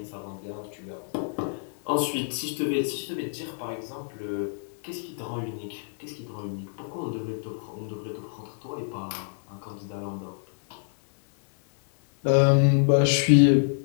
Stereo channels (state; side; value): silent; right; digital silence